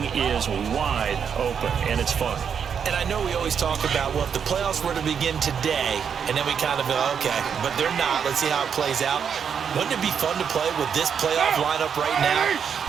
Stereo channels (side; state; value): left; quieter; 7.3 dB